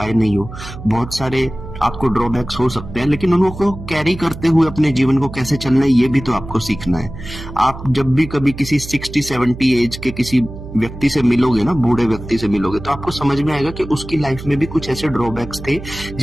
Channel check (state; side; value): noise; right; hum, 12 dB below the sound